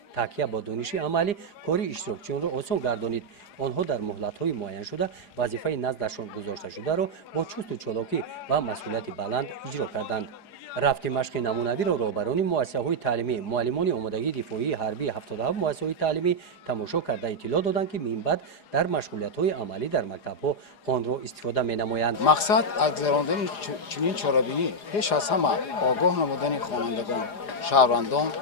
تکیه با دانش عملی کاری اشتراکچیان را آسان گردانید. آنها در مهلت‌های معین شده وظیفه نزدشان گذاشته شده را با چست و چالاکی و مسئولیت بلند اجرا کردند. رفت مشق نمونوی را رهبران مؤسسه‌های تعلیمی، معلمان آمادگی دفاعی حربی 77 مؤسسه‌های تعلیمی تماشا کرده اطلاع دادند که من بعد در مشغولیت‌های عملی در مکتب‌ها آن را استفاده می‌نمایند. مقصد از گذراندن چنین چاره‌بینی پیش از همه آگاه نمودن خوانندگان، شهروندان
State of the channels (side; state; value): right; late; 4.9 ms